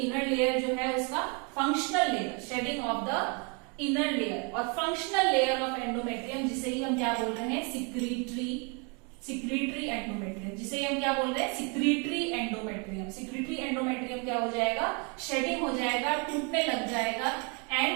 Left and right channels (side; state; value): left; quieter; 33.3 dB